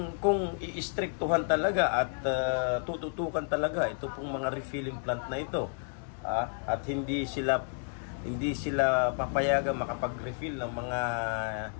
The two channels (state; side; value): silent; right; 57 dB below the other